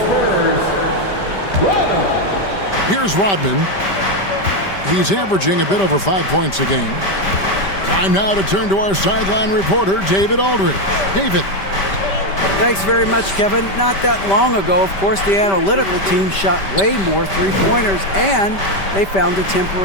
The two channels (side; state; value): right; late; 5.1 ms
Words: Rodman. Here's Rodman. He's averaging a bit over 5 points a game. Time now to turn to our sideline reporter, David Aldridge. David. Thanks very much, Kevin. Not that long ago, of course, the analytical team shot way more three-pointers, and they found a